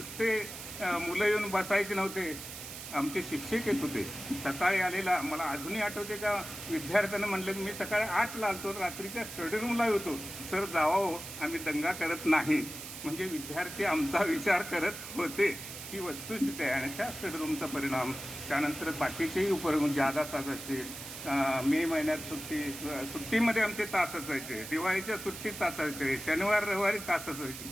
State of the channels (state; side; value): noise; right; hiss, 10 dB below the sound